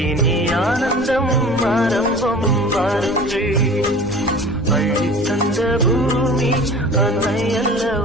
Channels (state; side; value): noise; left; rumble, 16 dB below the sound